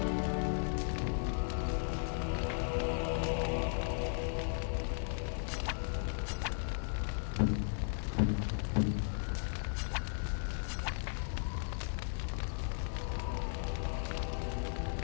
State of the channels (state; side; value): silent; right; digital silence